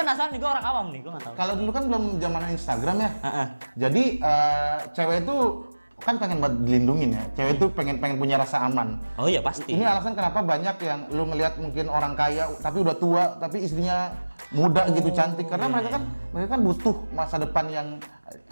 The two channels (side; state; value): both; inverted; correlation -1.00